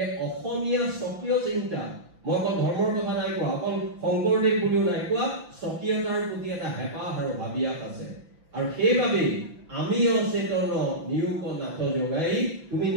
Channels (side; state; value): left; late; 5.9 ms